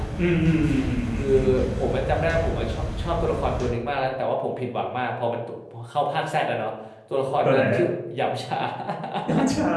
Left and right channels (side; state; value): both; identical; correlation 1.00